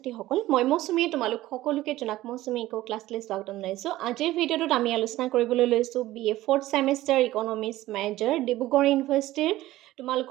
মই মৌচুমীয়ে তোমালোক সকলোকে জনাক মৌচুমী ইকো ক্লাছলৈ স্বাগতম জনাইছোঁ। আজিৰ ভিডিঅ'টোত আমি আলোচনা কৰিবলৈ লৈছোঁ BA 4th semester economics major Dibrugarh ইউনিভাৰ্চিটিৰ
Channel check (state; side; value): quieter; left; 16.0 dB